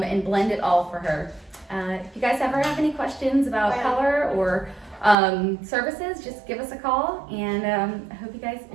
blend it all for her. If you guys ever have any questions about color or services, just give us a call, and I hope you guys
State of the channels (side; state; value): left; drops out; at 5.2 s